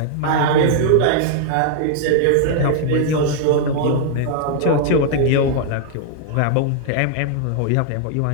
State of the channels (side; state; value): both; different; correlation 0.00